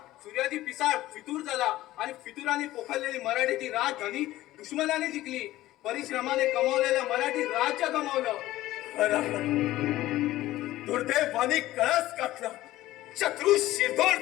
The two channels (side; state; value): right; quieter; 15.8 dB